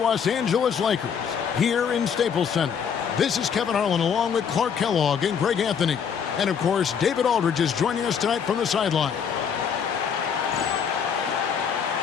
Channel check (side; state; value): right; quieter; 7.2 dB